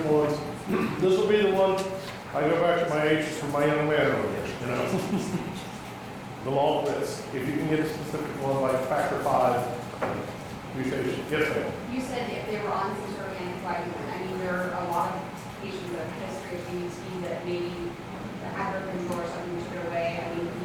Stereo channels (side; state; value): both; identical; correlation 1.00